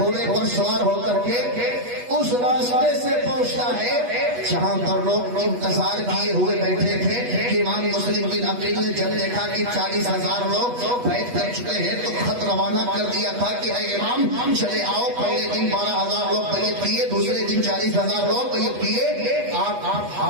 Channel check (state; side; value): late; left; 8.2 ms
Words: پر سوار ہو کر کے اس راستے سے پہنچتا ہے جہاں پر لوگ انتظار کیے ہوئے بیٹھے تھے کہ امام مسلم بن عقیل نے جب دیکھا کہ 40,000 لوگ بیٹھ کر چکے ہیں تو خط روانہ کر دیا تھا کہ اے امام چلے آؤ، پہلے دن 12,000 لوگ بیعت کیے، دوسرے دن 40,000 لوگ بیعت کیے، آپ